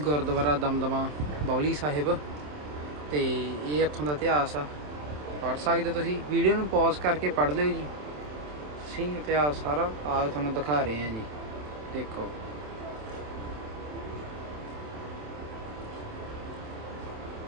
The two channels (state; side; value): late; left; 27 ms